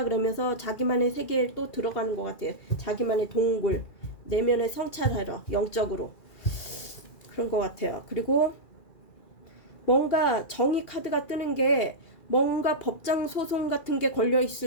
그러면서 자기만의 세계에 또 들어가는 것 같아요. 자기만의 동굴, 내면의 성찰하러, 영적으로. 그런 것 같아요. 그리고 뭔가 정의 카드가 뜨는 게 뭔가 법정 소송 같은 게 걸려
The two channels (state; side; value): late; right; 2.4 ms